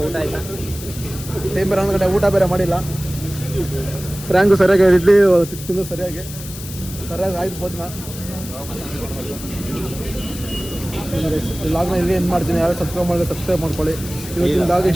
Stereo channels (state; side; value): noise; left; hiss, 13 dB below the sound